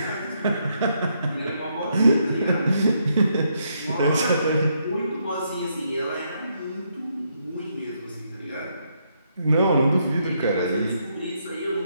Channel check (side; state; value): both; inverted; correlation -0.76